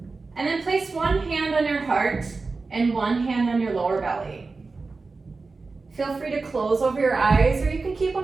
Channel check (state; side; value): quieter; left; 4.0 dB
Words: And then place one hand on your heart and one hand on your lower belly. Feel free to close over your eyes or you can keep